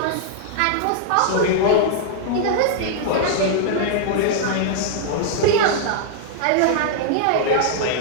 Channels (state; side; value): different; both; correlation -0.01